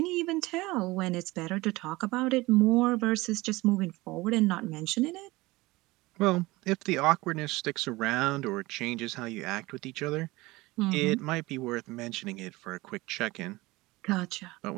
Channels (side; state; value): left; quieter; 20.9 dB